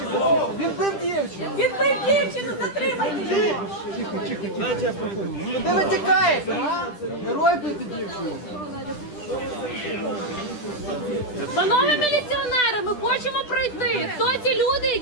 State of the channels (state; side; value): late; right; 10 ms